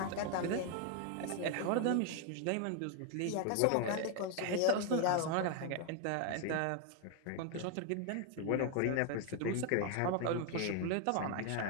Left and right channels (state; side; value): different; both; correlation 0.01